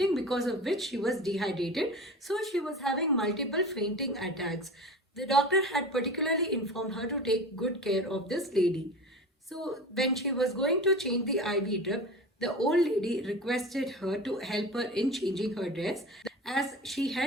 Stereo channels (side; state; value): both; normal; correlation 0.33